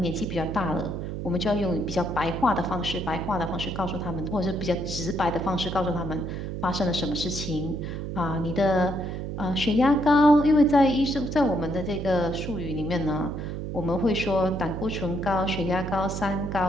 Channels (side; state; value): right; noise; hum, 5 dB below the sound